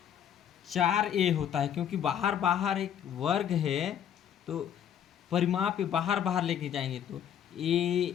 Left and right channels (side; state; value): right; quieter; 9.3 dB